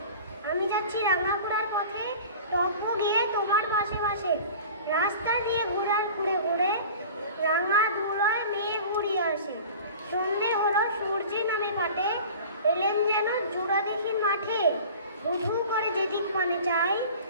আমি যাচ্ছি রাঙাপুরার পথে, টপ্প গিয়ে তোমার পাশে পাশে। রাস্তা দিয়ে ঘুরে ঘুরে রাঙা ধুলোয় মেয়ে ঘুরিয়ে আসে। সন্ধে হলো, সূর্যি নামে পাটে, এলেন যেন জোড়াদিঘির মাঠে। ধু করে যেদিক মানে চাই,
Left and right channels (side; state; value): both; inverted; correlation -0.40